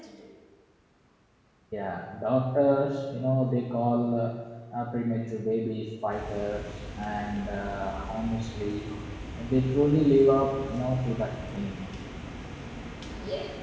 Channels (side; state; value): both; identical; correlation 1.00